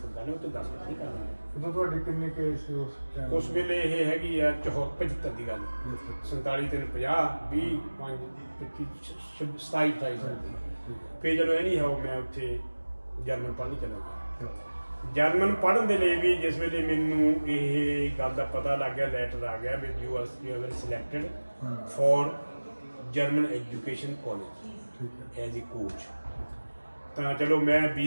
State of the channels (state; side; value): inverted; both; correlation -1.00